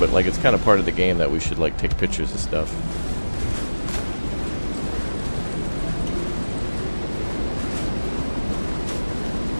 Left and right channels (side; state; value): both; inverted; correlation -1.00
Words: like it's kind of part of the game that we should like take pictures of stuff.